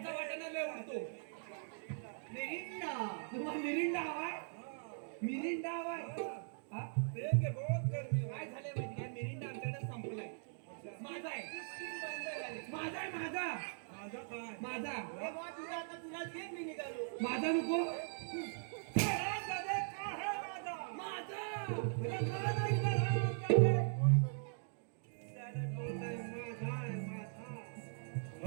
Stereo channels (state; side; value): silent; left; digital silence